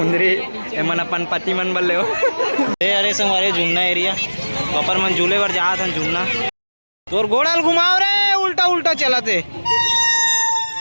मन अपन पति मन बल्ले हो अरे संगवारी झुमना एरिया ऊपर मन झूले पर जा था झुमना तोर गोड़ाल घुमाओ रे उल्टा उल्टा चला थे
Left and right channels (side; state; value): both; inverted; correlation -1.00